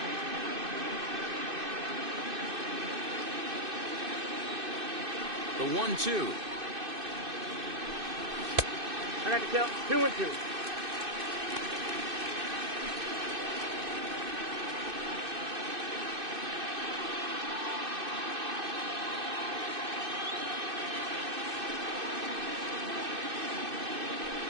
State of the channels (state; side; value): late; left; 2.6 ms